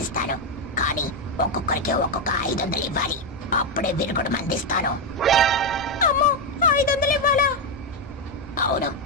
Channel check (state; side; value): normal; both; correlation 0.05